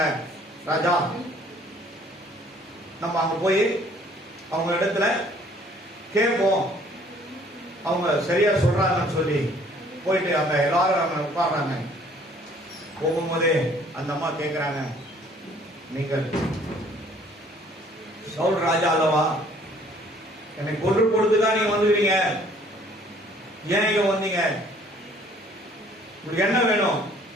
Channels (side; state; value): both; normal; correlation 0.58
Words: ராஜா, நம்ம அங்க போய் அவங்க இடத்துல கேட்போம், அவங்க சரியா சொல்றாங்கன்னு சொல்லி போயிட்டு அங்க எல்லாரும் அங்க உட்கார்றாங்க. போகும்போதே அந்த அம்மா கேட்கிறாங்க, நீங்கள் சவுல் ராஜா அல்லவா? என்னை கொன்று கொடுத்துதான் நீங்க வந்துக்கிறீங்க, ஏன் இங்க வந்தீங்க? உங்களுக்கு என்ன வேணும்?